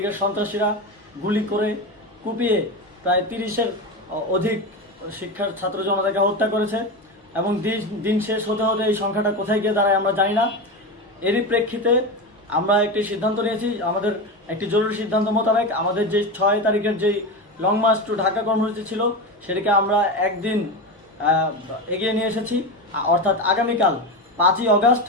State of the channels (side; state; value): both; normal; correlation 0.20